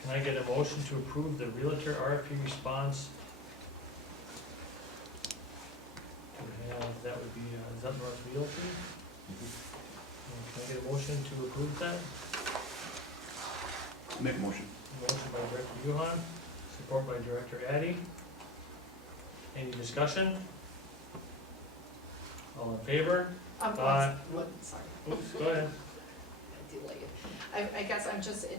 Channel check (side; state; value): both; normal; correlation 0.34